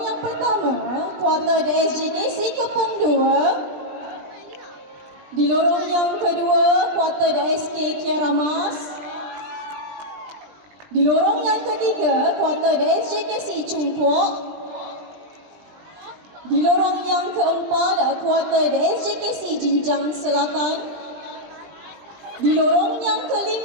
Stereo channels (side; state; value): left; late; 20 ms